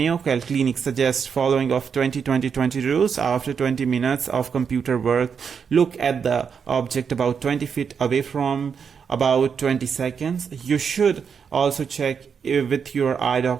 Clinic suggests following of 20-20-20 rules. After 20 minutes of computer work, look at the object about 20 feet away from about 20 seconds. You should also check with your eye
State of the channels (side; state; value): left; quieter; 6.6 dB